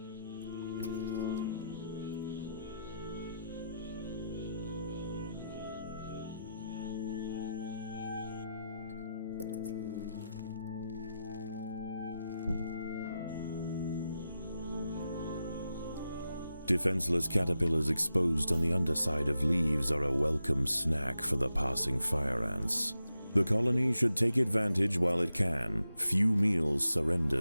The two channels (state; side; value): inverted; both; correlation -0.87